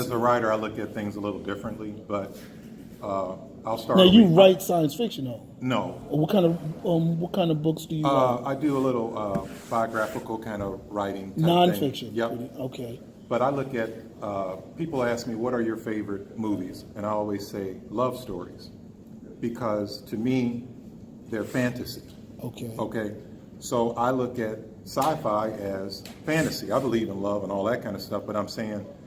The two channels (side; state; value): both; identical; correlation 1.00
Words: a writer, I look at things a little differently, but I'll start. Now you write science fiction, though. No. What kind of books do you write? I do a little biographical kind of writing. Type Nonfiction. thing. Yep. Okay. But I look at people ask me, what are your favorite movies? And I always say love stories, because to me, they're fantasy. Okay. Okay. So I look at sci-fi as fantasy. I believe in love and all that kind of stuff, but I'm saying